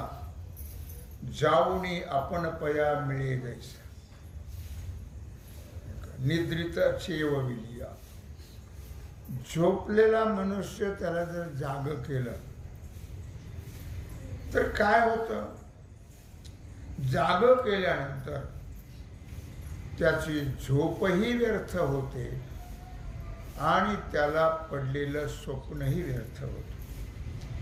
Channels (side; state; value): both; identical; correlation 1.00